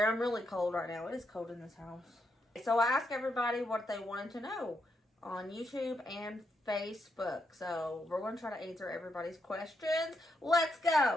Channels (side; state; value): both; normal; correlation 0.80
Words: I'm really cold right now. It is cold in this house. So I asked everybody what they wanted to know on YouTube and Facebook. So we're going to try to answer everybody's questions. Let's